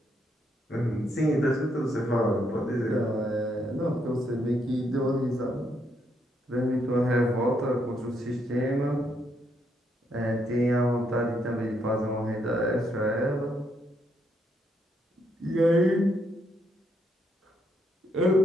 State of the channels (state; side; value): normal; both; correlation 0.76